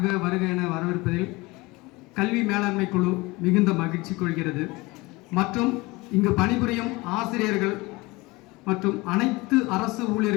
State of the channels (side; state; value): right; quieter; 22.9 dB